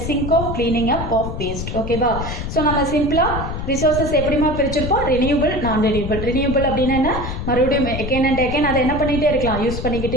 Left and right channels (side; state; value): left; noise; rumble, 5 dB below the sound